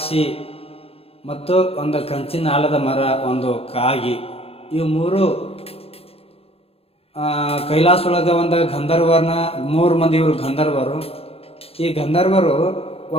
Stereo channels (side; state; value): right; late; 0.28 ms